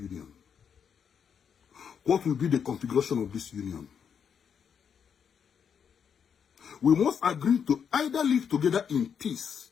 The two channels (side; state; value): right; quieter; 7.3 dB